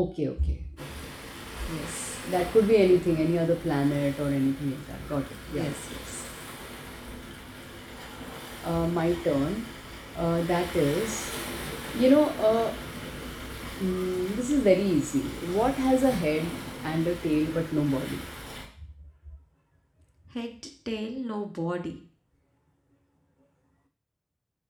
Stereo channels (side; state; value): both; identical; correlation 1.00